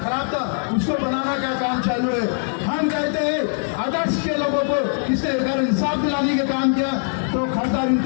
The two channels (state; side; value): silent; right; 64 dB below the other